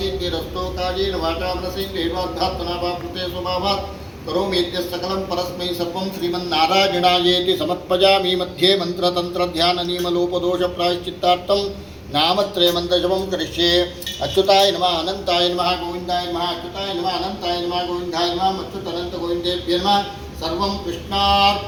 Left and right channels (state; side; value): identical; both; correlation 1.00